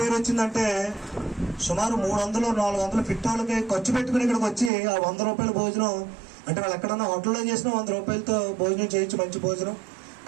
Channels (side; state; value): left; drops out; at 4.7 s